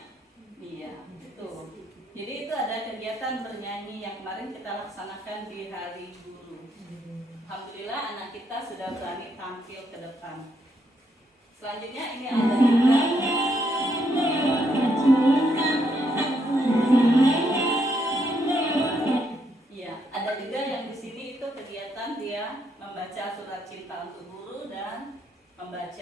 Jadi itu ada kegiatan bernyanyi yang kemarin kita laksanakan di Hari Guru. Alhamdulillah anak kita sudah berani tampil ke depan. Selanjutnya ini ada juga ya, ada juga yang di sini itu kegiatan dia membaca surat cinta untuk guru dan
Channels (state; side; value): normal; both; correlation 0.75